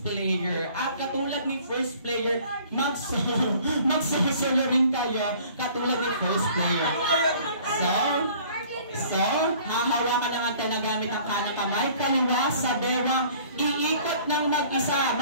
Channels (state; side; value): inverted; both; correlation -0.52